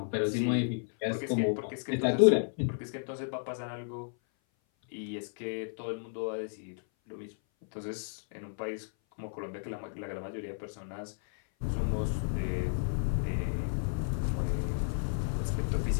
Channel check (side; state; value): right; silent; 56 dB below the other